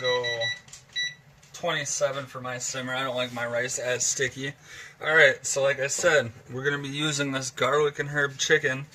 27 for my simmer. I don't like my rice as sticky. Alright, so like I said, we're going to be using this garlic and herb chicken.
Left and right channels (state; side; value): identical; both; correlation 1.00